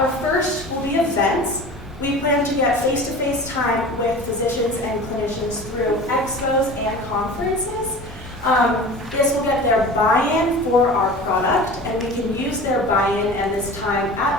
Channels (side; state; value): both; normal; correlation 0.37